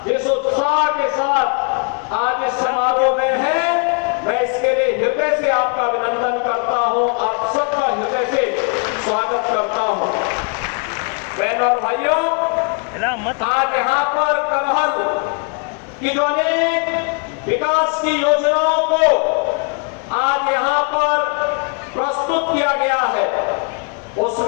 जिस उत्साह के साथ आज इस समारोह में हैं, मैं इसके लिए हृदय से आपका अभिनंदन करता हूं, आप सबका हृदय से स्वागत करता हूं। बहनों और भाइयों, आज यहाँ पर करहल की जो अनेक विकास की योजनाओं को आज यहाँ पर प्रस्तुत किया गया है,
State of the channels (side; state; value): right; quieter; 38.9 dB